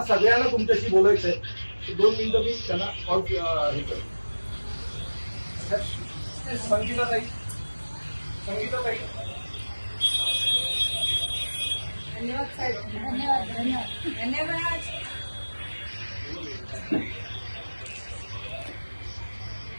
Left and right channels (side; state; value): both; inverted; correlation -1.00